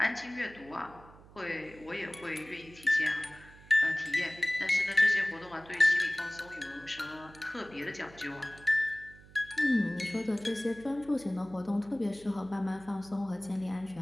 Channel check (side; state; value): right; noise; hum, 22 dB below the sound